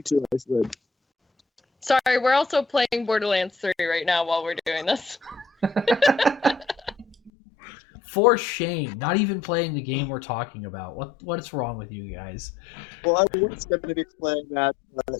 too, I slid. Sorry, we're also playing Borderlands 3 right now while we're doing this. For shame, not even playing the game we're talking about. What's wrong with you guys? Well, I was going to be playing that, but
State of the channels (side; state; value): right; drops out; at 7.3 s